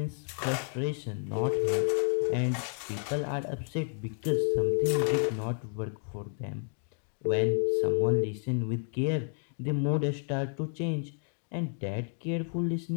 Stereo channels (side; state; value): right; silent; 57 dB below the other